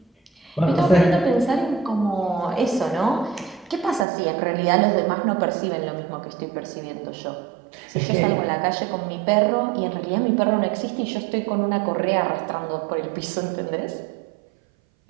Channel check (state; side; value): drops out; left; at 4.0 s